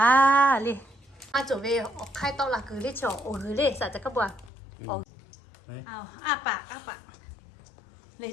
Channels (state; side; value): drops out; right; at 4.5 s